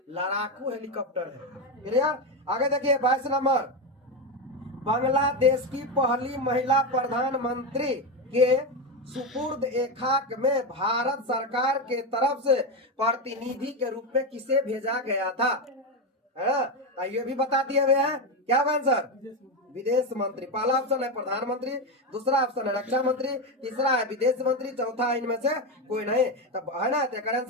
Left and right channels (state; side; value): normal; both; correlation 0.12